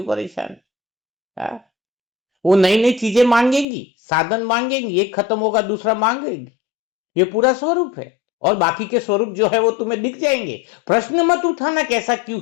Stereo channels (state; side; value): drops out; right; at 3.7 s